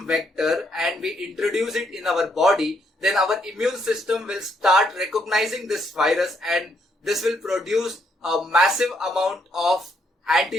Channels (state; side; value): normal; both; correlation 0.73